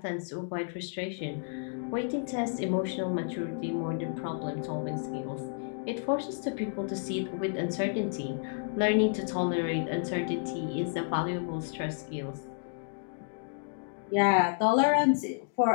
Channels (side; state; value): right; silent; digital silence